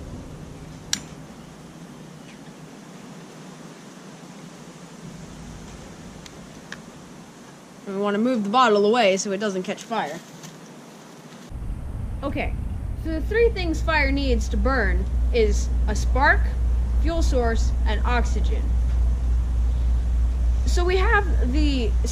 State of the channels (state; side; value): identical; both; correlation 1.00